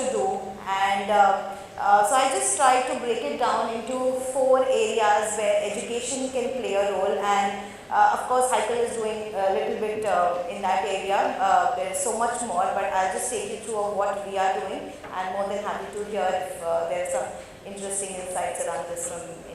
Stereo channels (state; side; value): identical; both; correlation 1.00